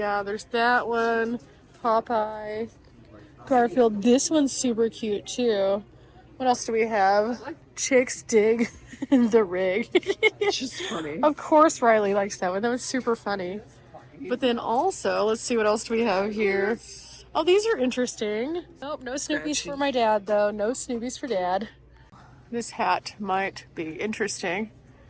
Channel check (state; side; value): identical; both; correlation 1.00